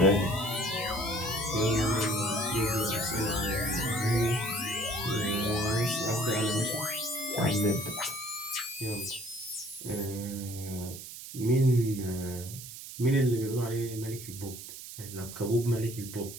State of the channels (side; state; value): right; noise; hiss, 12 dB below the sound